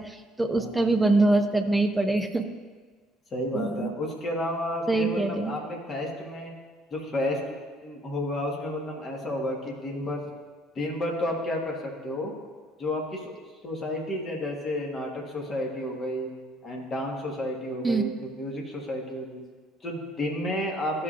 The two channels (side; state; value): both; normal; correlation 0.69